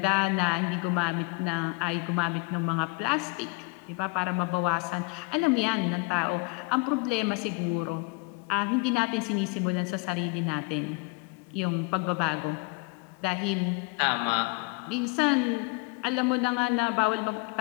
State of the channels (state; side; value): quieter; right; 29.3 dB